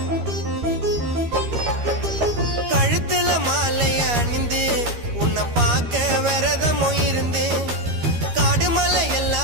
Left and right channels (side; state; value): left; late; 13 ms